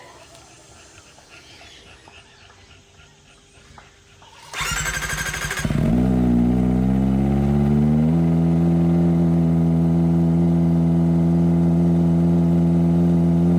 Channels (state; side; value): identical; both; correlation 1.00